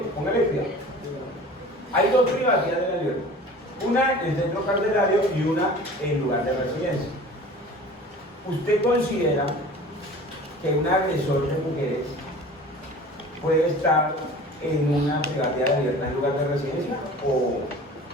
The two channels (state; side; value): normal; both; correlation 0.42